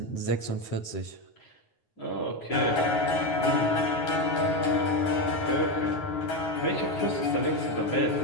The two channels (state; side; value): late; right; 9.5 ms